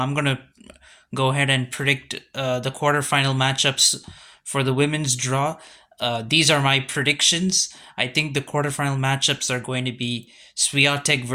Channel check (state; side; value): identical; both; correlation 1.00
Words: gonna go ahead and predict the quarterfinal matchups for the women's draw. These are my predictions. I think the quarterfinal matchups are going to be Swiatek